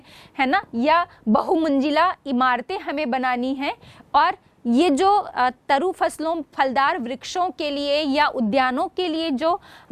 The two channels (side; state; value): both; identical; correlation 1.00